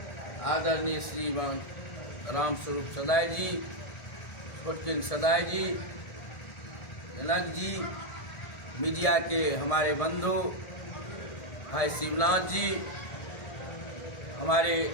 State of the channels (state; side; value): late; right; 1.7 ms